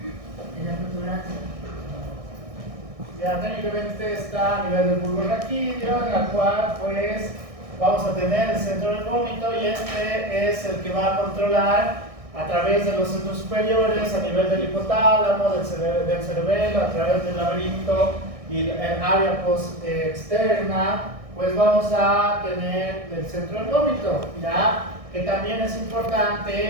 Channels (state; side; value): late; left; 1.6 ms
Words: En la protuberancia. Ya técnicamente está a nivel del bulbo raquídeo, en la cual pues vamos a tener el centro del vómito, y este es el que va a controlar a través de los centros superiores, a nivel del hipotálamo, del cerebelo, a través del laberinto y el área externa, pues vamos a tener el centro del vómito, ¿ya? Que también es